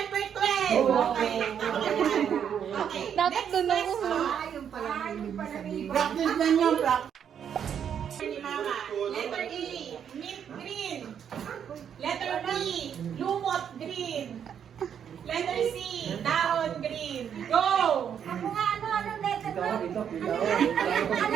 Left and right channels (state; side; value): quieter; left; 8.4 dB